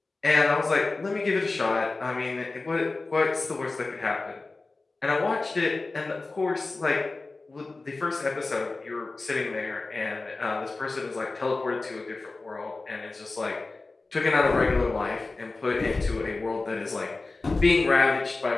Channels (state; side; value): quieter; right; 3.5 dB